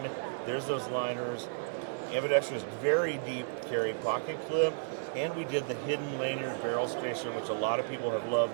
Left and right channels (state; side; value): silent; left; digital silence